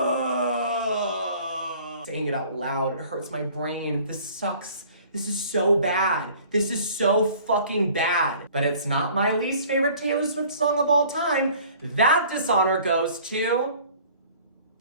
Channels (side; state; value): both; inverted; correlation -0.51